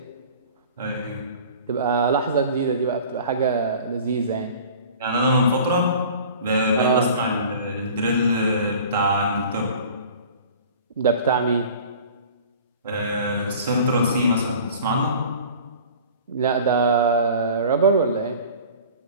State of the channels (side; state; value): both; inverted; correlation -0.44